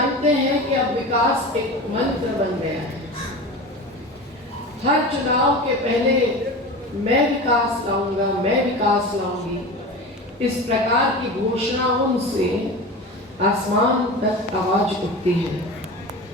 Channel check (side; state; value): both; normal; correlation 0.30